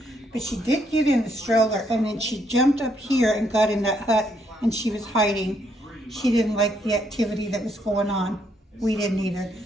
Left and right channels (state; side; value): normal; both; correlation 0.73